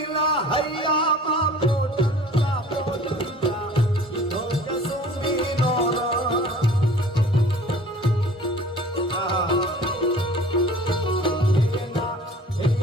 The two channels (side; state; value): both; normal; correlation 0.47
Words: હૈયામાં પોટલા પોટલા ઈધો કસુમીનો રંગ.